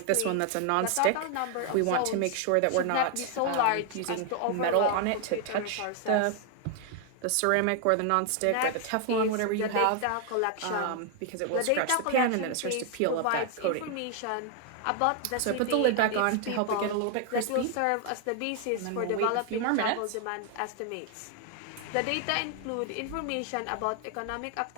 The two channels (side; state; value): both; different; correlation 0.00